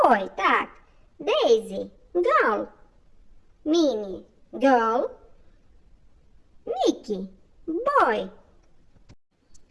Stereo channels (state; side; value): identical; both; correlation 1.00